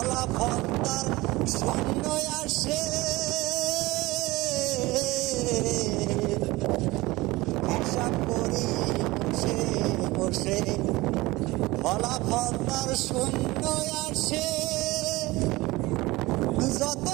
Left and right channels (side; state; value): left; quieter; 20.6 dB